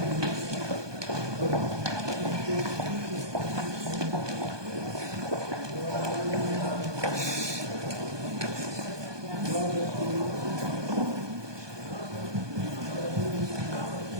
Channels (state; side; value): late; left; 1.2 ms